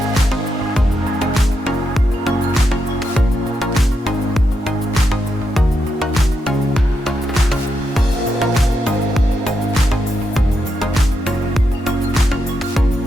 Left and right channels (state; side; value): normal; both; correlation 0.83